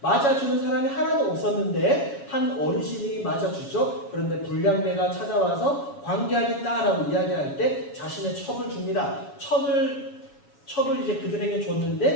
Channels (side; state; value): right; late; 7.2 ms